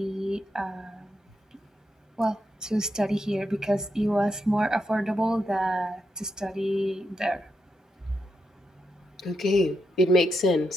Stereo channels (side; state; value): both; normal; correlation 0.84